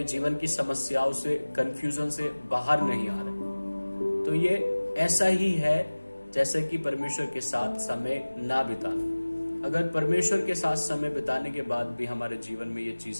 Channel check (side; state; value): both; inverted; correlation -1.00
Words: जीवन की समस्याओं से, कंफ्यूजन से बाहर नहीं आ रहे। तो ये ऐसा ही है जैसे कि परमेश्वर के साथ समय ना बिताना। अगर परमेश्वर के साथ समय बिताने के बाद भी हमारे जीवन में ये